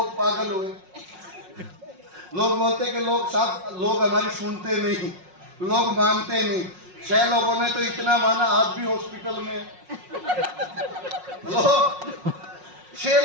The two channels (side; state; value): left; late; 5.5 ms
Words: पागल हुए। लोग बोलते कि लोग हमारी सुनते नहीं, लोग मानते नहीं। 6 लोगों ने तो इतना माना, आज भी हॉस्पिटल में। लोग 6